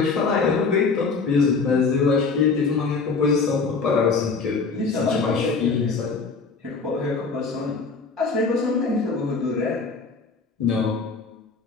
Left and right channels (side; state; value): right; quieter; 4.6 dB